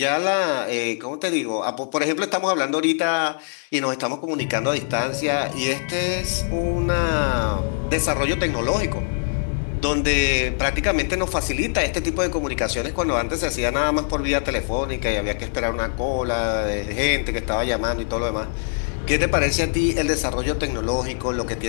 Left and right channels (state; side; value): silent; right; digital silence